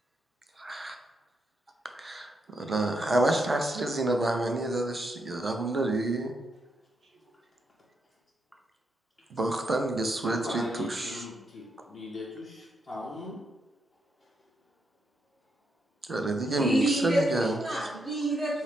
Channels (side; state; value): both; normal; correlation 0.80